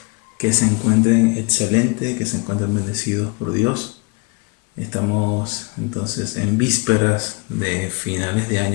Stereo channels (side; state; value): right; quieter; 29.3 dB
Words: que se encuentren excelentes, que se encuentren bendecidos por Dios. Estamos entonces en vísperas de finales de